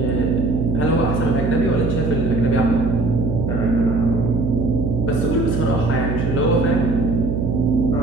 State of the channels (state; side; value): noise; right; hum, 2 dB below the sound